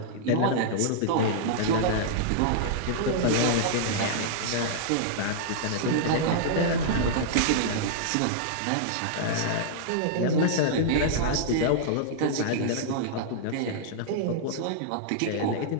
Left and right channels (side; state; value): both; different; correlation -0.02